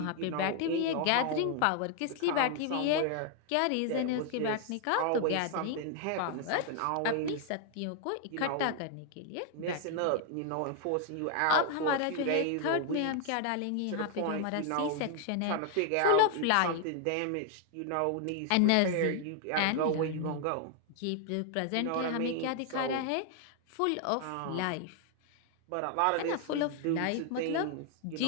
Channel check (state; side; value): different; both; correlation 0.00